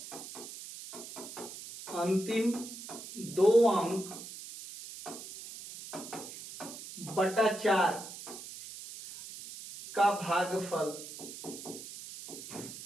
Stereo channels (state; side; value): noise; right; hiss, 12 dB below the sound